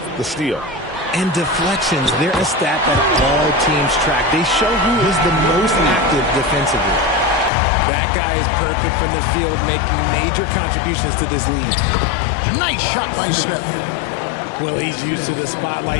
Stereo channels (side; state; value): right; drops out; at 7.5 s